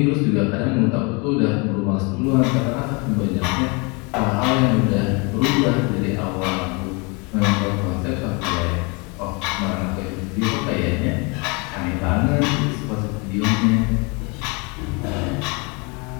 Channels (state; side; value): quieter; right; 30.3 dB